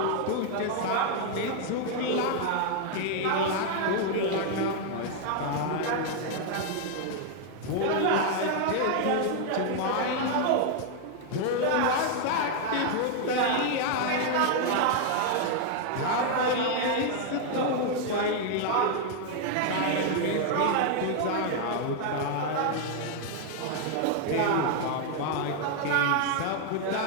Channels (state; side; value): different; both; correlation 0.00